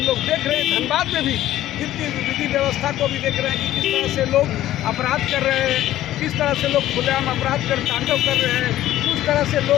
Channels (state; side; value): quieter; right; 13.7 dB